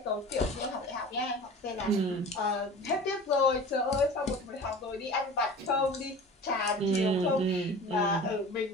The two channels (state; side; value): normal; both; correlation 0.38